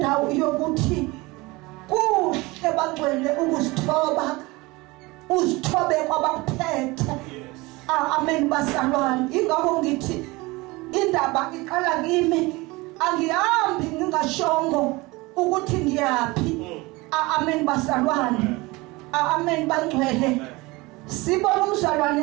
yokuthi kuhle bangcwele ukuzithoba. Uzithobe kwabaphethe. Amen basalwane. Ingakho ngithi indaba iqala kimi. Angihambi ngingashongo ukuthi ngiyaphi. Amen basalwane. Amen bangcwele. Sibona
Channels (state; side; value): quieter; left; 22.8 dB